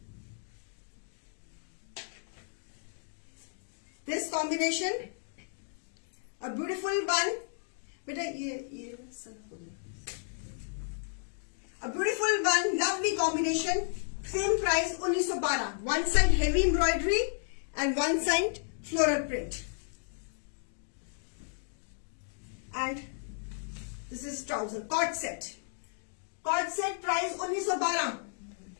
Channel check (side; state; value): right; silent; digital silence